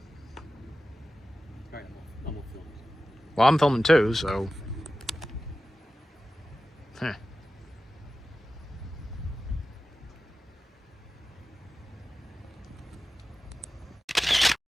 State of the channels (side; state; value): both; normal; correlation 0.94